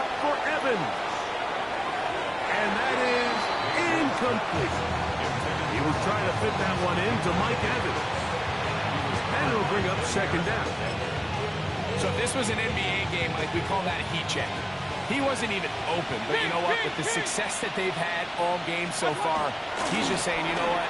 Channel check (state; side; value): identical; both; correlation 1.00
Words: for Evans. And that is incomplete. He was trying to fit that one into Mike Evans. And it'll bring up 2nd down. So if this was an NBA game, like we call that a heat check. He wasn't even open, but you know what? With the success that they've had all game so far, he's just saying, you know what?